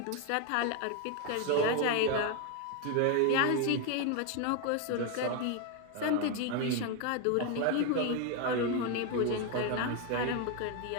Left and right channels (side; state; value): both; different; correlation 0.01